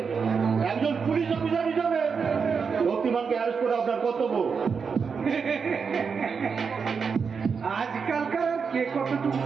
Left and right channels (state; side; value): quieter; left; 5.8 dB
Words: একজন পুলিশ অফিসার হিসাবে শক্তিমানকে অ্যারেস্ট করে আপনার কর্তব্য। আজকালকার কে কতটুকু